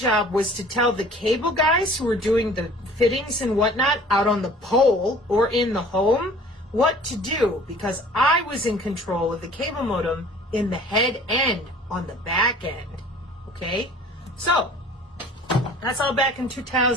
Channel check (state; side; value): normal; both; correlation 0.49